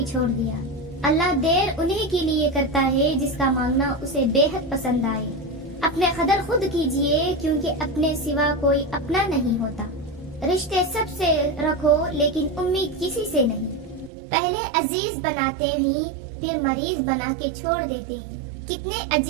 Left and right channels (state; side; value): drops out; left; at 14.1 s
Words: چھوڑ دیا. اللہ دیر انہیں کے لیے کرتا ہے جس کا مانگنا اسے بے حد پسند آئے. اپنے قدر خود کیجئے کیونکہ اپنے سوا کوئی اپنا نہیں ہوتا. رشتے سب سے رکھو لیکن امید کسی سے نہیں. پہلے عزیز بناتے ہیں پھر مریض بنا کے چھوڑ دیتے ہیں. کتنے